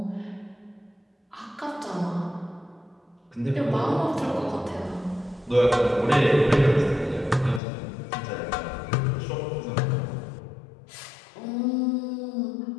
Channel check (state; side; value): drops out; right; at 7.6 s